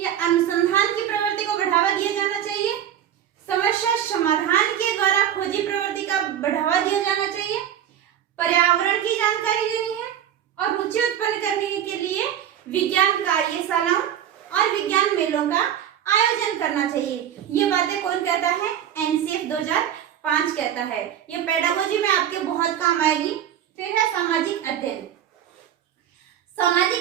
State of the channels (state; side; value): quieter; left; 10.2 dB